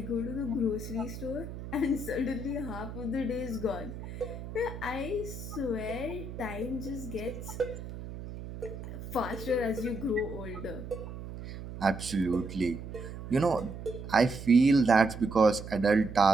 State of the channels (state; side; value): noise; right; hum, 10 dB below the sound